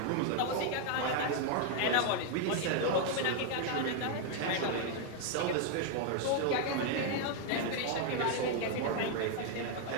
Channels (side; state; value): both; different; correlation 0.00